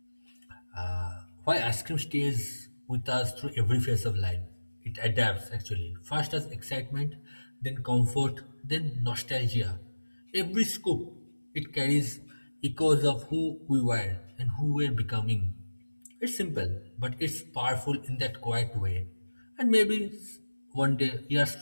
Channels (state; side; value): inverted; both; correlation -1.00